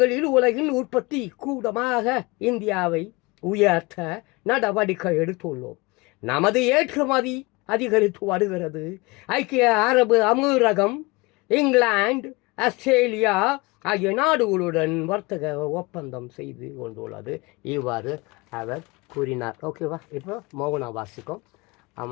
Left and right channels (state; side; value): quieter; right; 24.6 dB